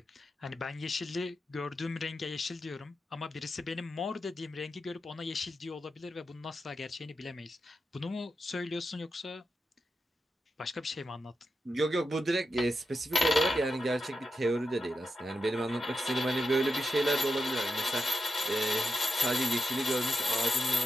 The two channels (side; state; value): both; normal; correlation 0.88